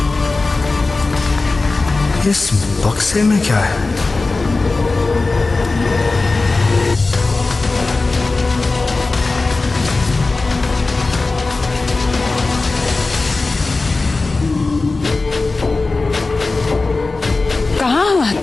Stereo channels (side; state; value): right; quieter; 3.6 dB